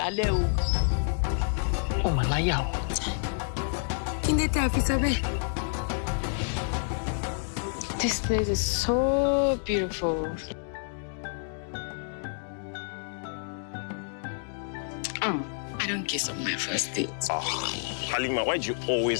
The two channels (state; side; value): silent; right; digital silence